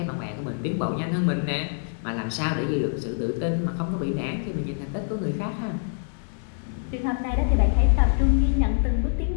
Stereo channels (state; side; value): silent; right; 61 dB below the other